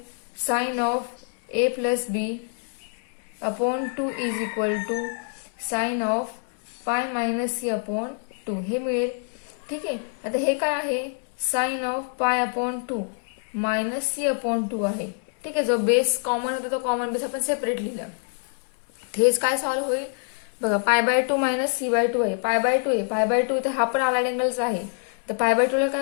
sine of A plus B upon 2 is equal to sine of pi minus C upon 2 हे मिळेल. ठीक आहे. आता हे काय आहे, sine of pi upon 2 minus C upon 2 आहे. ठीक आहे. जो बेस कॉमन होता तो कॉमन बेस आपण सेपरेट लिहिला. हेच काय सॉल्व्ह होईल बघा, पाय बाय 2 मायनस सी बाय 2 आहे, पाय बाय 2 आहे, पाय बाय 2 इथे हा पण आलाइड अँगलचा आहे. तर पाय बाय 2 ला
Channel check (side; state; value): right; silent; 58 dB below the other